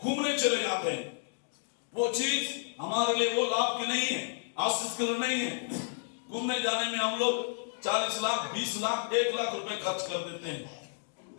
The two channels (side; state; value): right; silent; digital silence